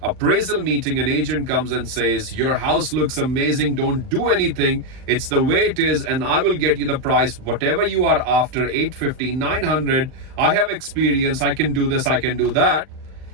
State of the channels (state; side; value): late; left; 39 ms